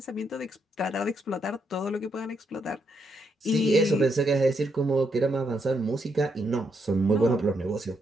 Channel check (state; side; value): normal; both; correlation 0.78